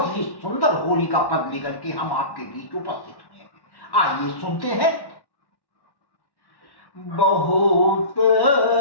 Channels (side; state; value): right; late; 1.1 ms